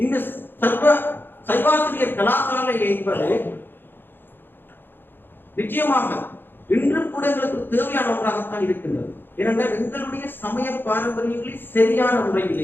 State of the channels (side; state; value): right; late; 0.099 ms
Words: இந்த சைவாசிரியர் கலாசாலை என்பது நிச்சயமாக இன்று கூட எங்களுக்கு தேவையான ஒன்றாகத்தான் இருக்கின்றது. ஏனென்றால் எங்களுடைய சமய பாரம்பரியங்களை சரியான